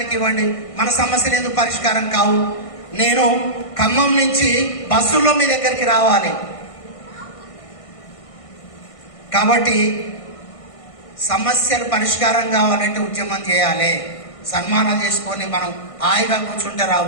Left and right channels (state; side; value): late; right; 1.6 ms